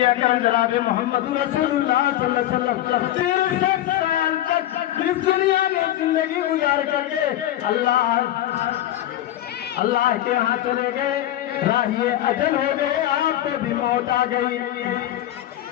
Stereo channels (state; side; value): quieter; right; 13.3 dB